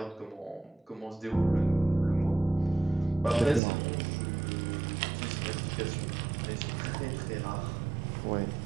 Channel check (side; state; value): left; drops out; at 3.6 s